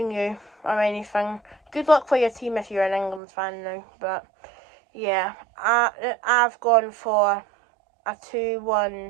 you or anything. Good luck for your team if you're an England fan now, but yeah, I've gone for a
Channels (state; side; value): drops out; left; at 3.2 s